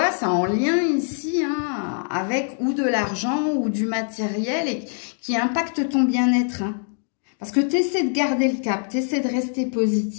c'est en lien ici, hein, avec ou de l'argent ou du matériel et qui impacte ton bien-être. Hein. Parce que tu essaies de garder le cap, tu essaies de rester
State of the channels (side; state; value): right; silent; 61 dB below the other